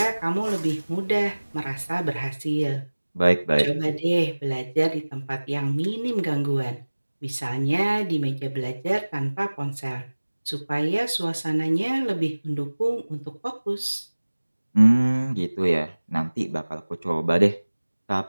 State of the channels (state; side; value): inverted; both; correlation -1.00